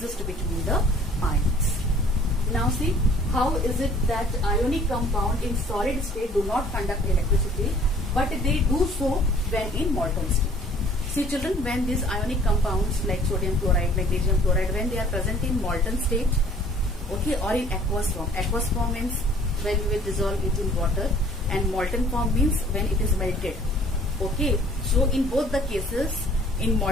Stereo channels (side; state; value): both; normal; correlation 0.54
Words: between the ions. Now see, how is it that ionic compound in solid state do not conduct electricity, but they do so when in molten state? See children, when these ionic compounds like sodium chloride, magnesium chloride, when they are present in molten state, okay, or in aqueous form means when we will dissolve it in water, and molten form means when it is melted. Okay, so in both the cases, in